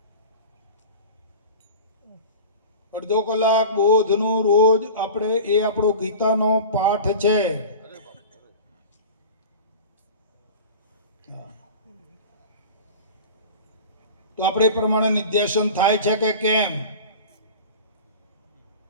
અડધો કલાક બોધનું રોજ આપણે, એ આપણો ગીતાનો પાઠ છે. તો આપણે એ પ્રમાણે નિધ્યાસન થાય છે કે કેમ?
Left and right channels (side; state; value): both; inverted; correlation -0.35